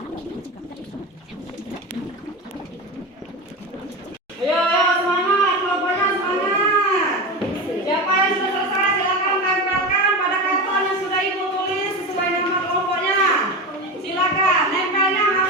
Ayo, semangat, kelompoknya semangat. Siapa yang sudah selesai silakan tempelkan pada karton yang sudah Ibu tulis sesuai nama kelompoknya. Silakan, nempelnya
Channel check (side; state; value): both; normal; correlation 0.23